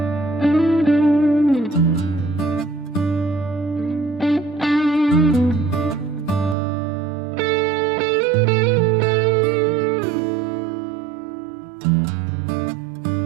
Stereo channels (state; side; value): drops out; left; at 6.6 s